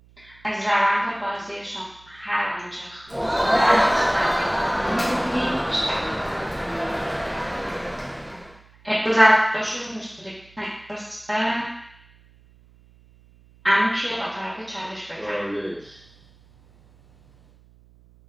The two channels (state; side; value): noise; right; hum, 28 dB below the sound